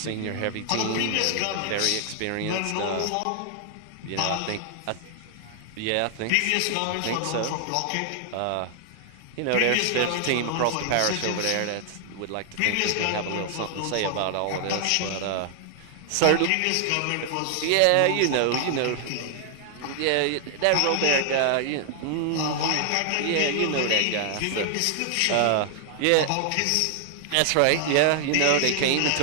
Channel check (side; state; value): both; different; correlation 0.00